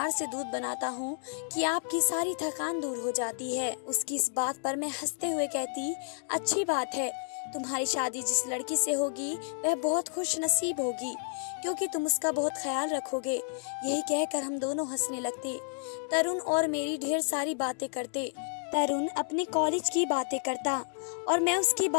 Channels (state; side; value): silent; right; digital silence